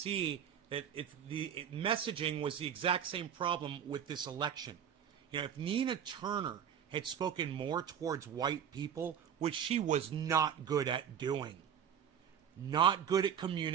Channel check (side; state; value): left; quieter; 8.6 dB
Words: that messaging was the exact same problem with this election. You know, if Nina Turner had spoken more towards white people, which she was not good at doing, not good at